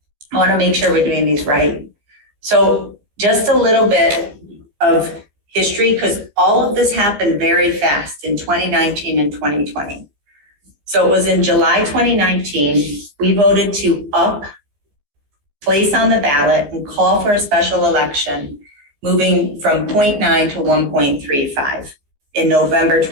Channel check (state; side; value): late; left; 14 ms